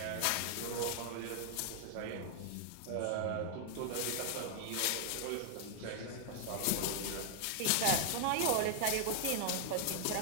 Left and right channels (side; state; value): both; different; correlation 0.00